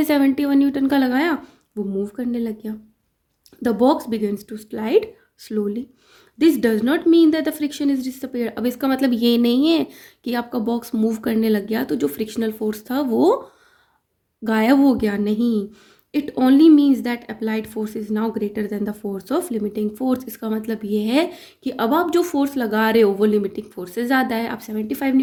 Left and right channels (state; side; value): identical; both; correlation 1.00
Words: 71 न्यूटन का लगाया वो मूव करने लग गया। The box begins to slide slowly. This does not mean that the friction is disappeared. अब इसका मतलब ये नहीं है कि आपका बॉक्स मूव करने लग गया तो जो फ्रिक्शनल फोर्स था वो गायब हो गया, नहीं। It only means that applied force is now greater than the force of limiting force. इसका मतलब ये है कि अब आप जो फोर्स लगा रहे हो वो लिमिटिंग फोर्स से ज़्यादा है। आप 75